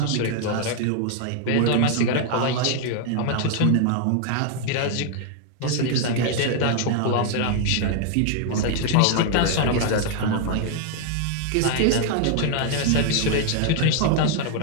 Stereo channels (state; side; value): different; both; correlation 0.00